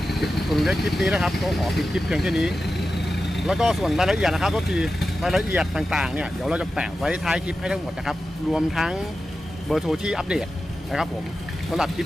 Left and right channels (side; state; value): both; normal; correlation 0.92